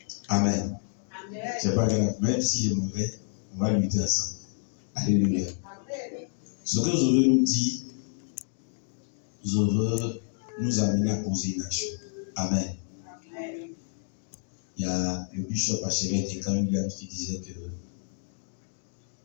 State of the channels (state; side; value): silent; right; digital silence